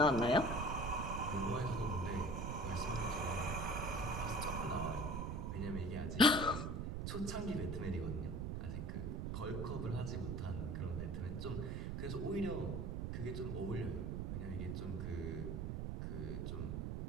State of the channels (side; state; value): right; noise; rumble, 2 dB below the sound